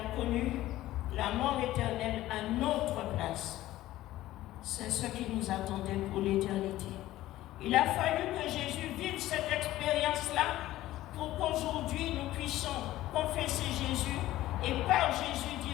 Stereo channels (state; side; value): quieter; right; 15.4 dB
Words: connu la mort éternelle à notre place. C'est ce qui nous attendait pour l'éternité. Il a fallu que Jésus vive cette expérience-là pour qu'aujourd'hui nous puissions confesser Jésus et par Jésus